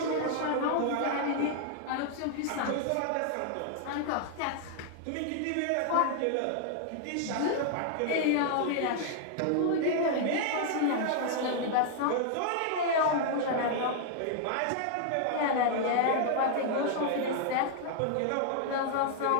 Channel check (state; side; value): different; both; correlation 0.00